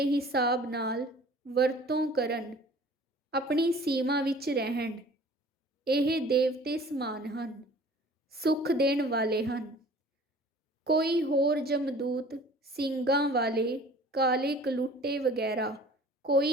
ਹਿਸਾਬ ਨਾਲ ਵਰਤੋਂ ਕਰਨ, ਆਪਣੀ ਸੀਮਾ ਵਿੱਚ ਰਹਿਣ, ਇਹ ਦੇਵਤੇ ਸਮਾਨ ਹਨ, ਸੁੱਖ ਦੇਣ ਵਾਲੇ ਹਨ। ਕੋਈ ਹੋਰ ਜਮਦੂਤ, ਸਿੰਗਾਂ ਵਾਲੇ, ਕਾਲੇ ਕਲੂਟੇ ਵਗੈਰਾ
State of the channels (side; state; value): both; normal; correlation 0.48